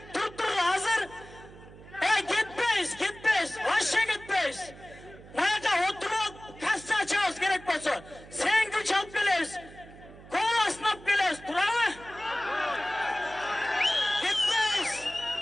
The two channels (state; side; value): noise; right; hum, 19 dB below the sound